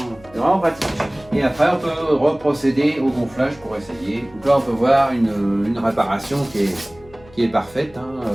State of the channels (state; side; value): noise; left; hum, 24 dB below the sound